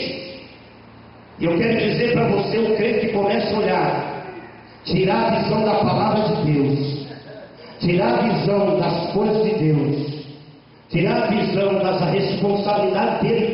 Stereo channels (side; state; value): both; identical; correlation 1.00